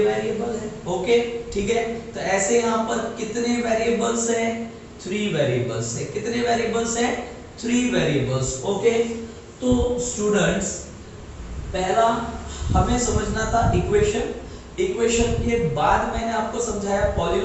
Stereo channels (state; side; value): identical; both; correlation 1.00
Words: वेरिएबल है। ओके ठीक है। तो ऐसे यहाँ पर कितने वेरिएबल्स हैं? 3 वेरिएबल्स है। कितने वेरिएबल्स हैं? 3 वेरिएबल्स। ओके। तो स्टूडेंट्स पहला हमें समझना था इक्वेशन, इक्वेशन के बाद मैंने आपको समझाया